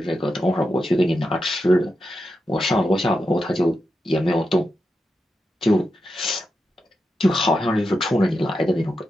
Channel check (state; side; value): normal; both; correlation 0.87